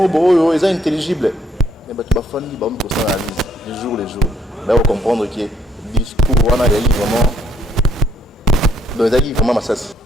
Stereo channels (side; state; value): both; normal; correlation 0.70